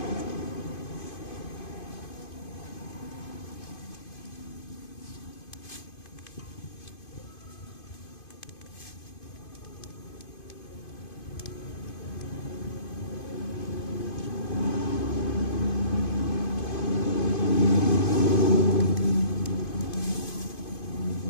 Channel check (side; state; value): right; late; 2.5 ms